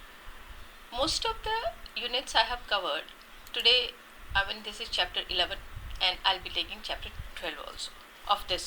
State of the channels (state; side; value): identical; both; correlation 1.00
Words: Most of the units I have covered today. This is chapter 11 and I'll be taking chapter 12 also of